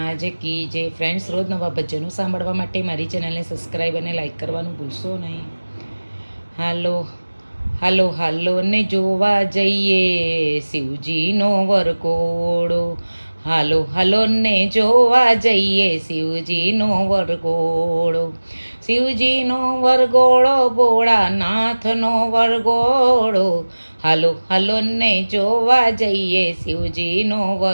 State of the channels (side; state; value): both; inverted; correlation -1.00